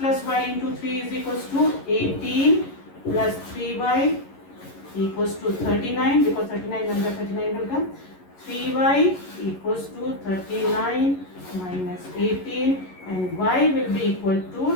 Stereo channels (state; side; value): late; right; 11 ms